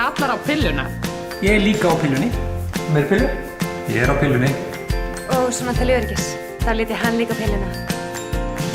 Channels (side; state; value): both; identical; correlation 1.00